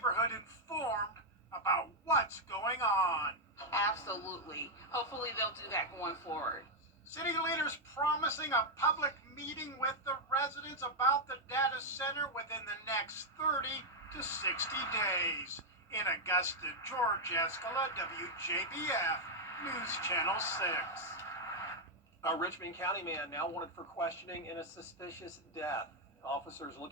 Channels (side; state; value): both; normal; correlation -0.01